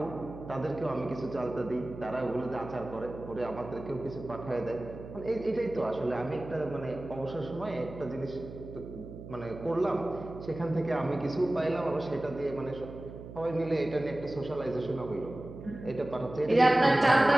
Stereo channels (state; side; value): noise; right; hum, 12 dB below the sound